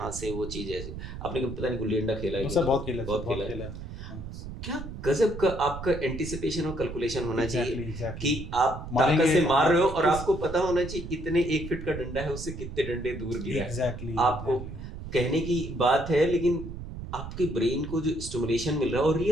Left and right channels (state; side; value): noise; right; rumble, 9 dB below the sound